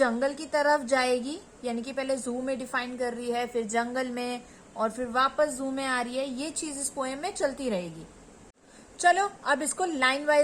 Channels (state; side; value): identical; both; correlation 1.00